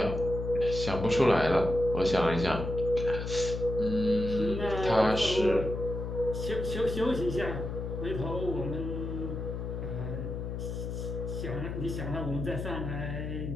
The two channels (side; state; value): left; noise; hum, 5 dB below the sound